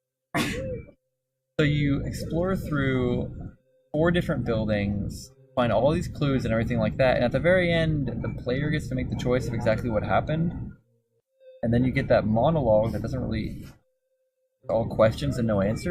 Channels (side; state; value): both; identical; correlation 1.00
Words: So you explore through 4 different buildings, find all these clues and everything like that, and at the very end, the player gets to make the choice of exactly what happened, and then you get that monologue that doesn't really... all questions and no